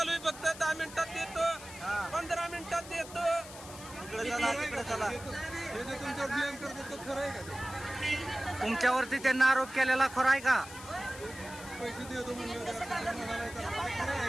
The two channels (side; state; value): left; noise; hiss, 15 dB below the sound